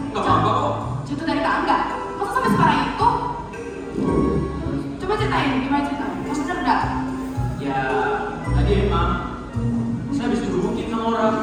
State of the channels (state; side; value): identical; both; correlation 1.00